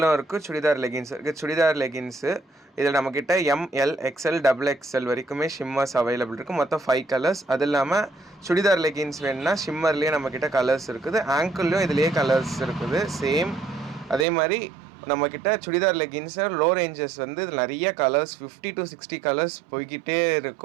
இருக்குது, சுடிதார் லெகின்ஸ் இருக்குது. சுடிதார் லெகின்ஸு இதில் நம்மக்கிட்ட எம்எல் எக்ஸ்எல் டபுள் எக்ஸ்எல் வரைக்குமே ஷிம்மர்ஸ் அவைலபிள் இருக்குது. மொத்தம் 5 கலர்ஸ். அது இல்லாமல் சுடிதார் லெகின்ஸ் வேணுன்னா ஷிம்மர்லேயே நம்மக்கிட்ட கலர்ஸ் இருக்குது, ஆங்கிள்லேயும் இதுலேயே கலர்ஸ் இருக்குது சேம். அதே மாதிரி நம்மக்கிட்ட சுடிதார் லெகின்ஸை லோ ரேஞ்சஸ் வந்து இதில் நிறைய கலர்ஸ் 50 to 60 கலர்ஸ் போய்கிட்டே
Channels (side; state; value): left; drops out; at 14.2 s